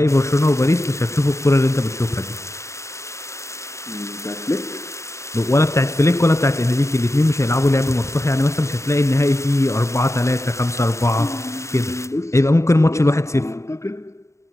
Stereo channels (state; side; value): late; right; 0.14 ms